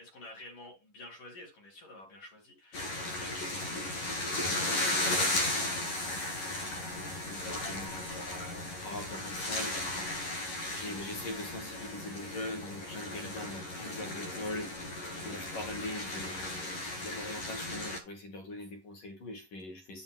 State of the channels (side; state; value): right; late; 11 ms